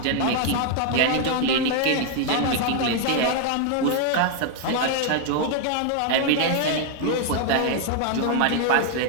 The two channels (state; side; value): different; both; correlation 0.00